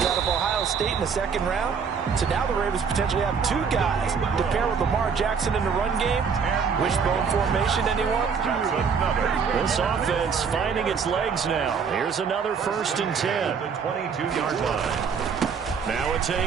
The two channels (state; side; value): quieter; left; 6.2 dB